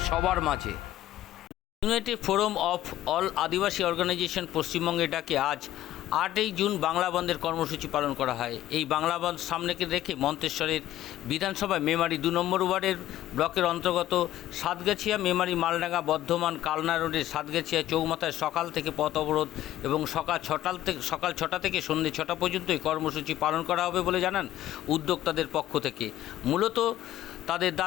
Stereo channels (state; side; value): quieter; right; 13.7 dB